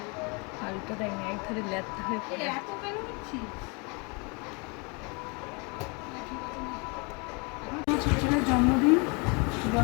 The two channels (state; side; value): quieter; right; 31.1 dB